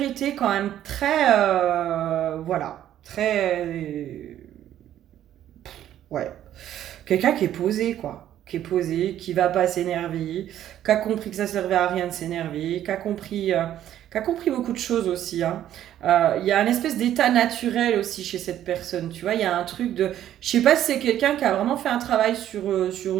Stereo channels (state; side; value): quieter; left; 11.6 dB